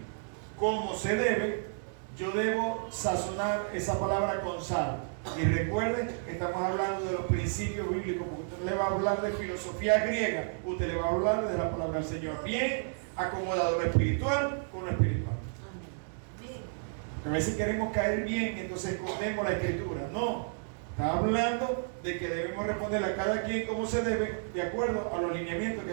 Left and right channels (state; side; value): silent; left; digital silence